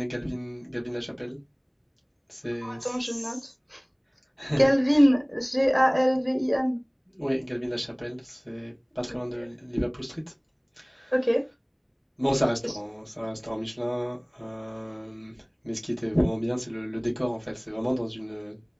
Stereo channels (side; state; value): both; identical; correlation 1.00